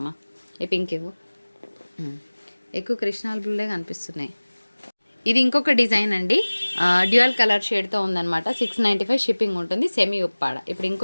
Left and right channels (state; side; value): inverted; both; correlation -1.00